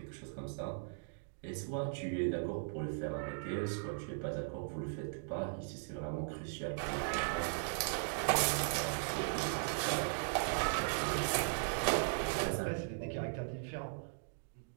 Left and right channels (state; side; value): silent; left; digital silence